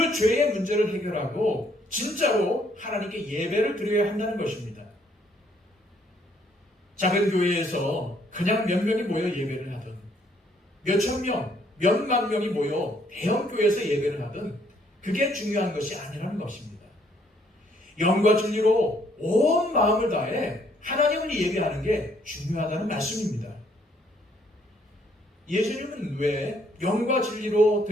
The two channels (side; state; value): both; normal; correlation 0.67